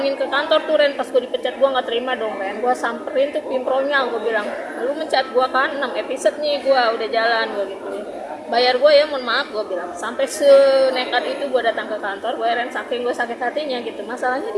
ke kantor tuh Ren, pas gue dipecat gue nggak terima dong Ren. Gue samperin tuh pimpronya, gue bilang lu mencat gue kan 6 episode nih, gue udah jalan gue gitu. Bayar gue ya, mohon maaf gue bilang. Sampai senekat itu gue datang ke kantor gue, Ren, saking gue sakit hatinya gitu. Masalahnya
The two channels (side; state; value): both; identical; correlation 1.00